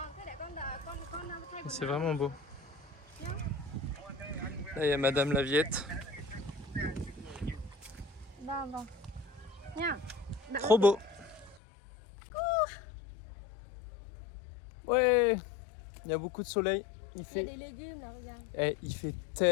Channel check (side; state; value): right; drops out; at 11.6 s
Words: thế để con đợi con thay c'est vraiment beau. Là il y a Madame Laviette. Vâng vâng. Nha. Trop beau. Ouais, il y a beaucoup de soleil. Il Il y a fait, des légumes là, regarde. il fait